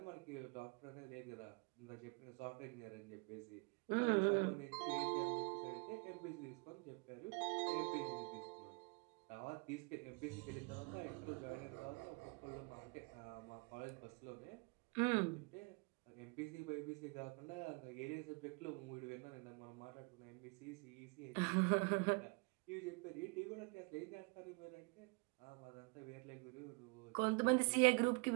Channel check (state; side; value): quieter; left; 31.2 dB